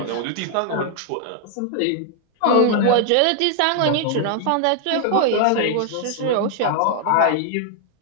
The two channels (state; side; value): different; both; correlation 0.00